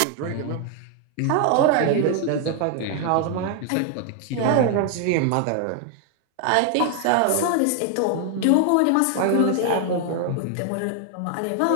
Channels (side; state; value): both; different; correlation 0.00